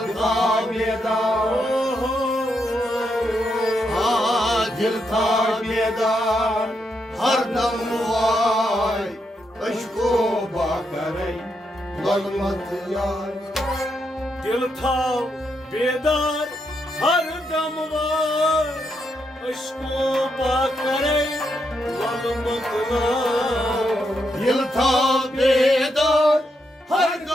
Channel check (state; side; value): normal; both; correlation 0.81